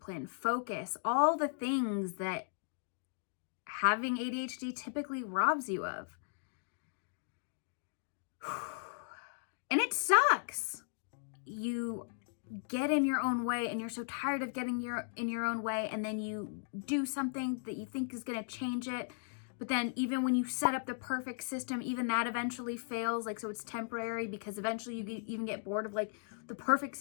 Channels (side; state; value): right; silent; digital silence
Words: focus, all the things that having ADHD typically robs you of. And it sucks. You get in your own way and you're so tired of getting in your own way, and then you do something that you think is going to change it. But then even when you set up the perfect system, even that eventually fails. Like, so it's temporary because eventually you even get bored of like the perfect